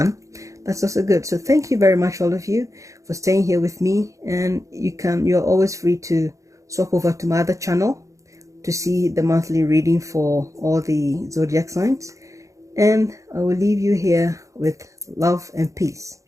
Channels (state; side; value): late; left; 0.15 ms